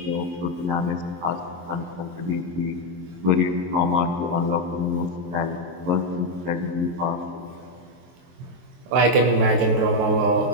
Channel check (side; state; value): left; late; 24 ms